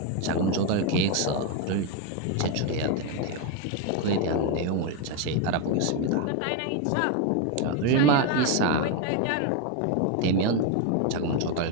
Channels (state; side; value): different; both; correlation 0.02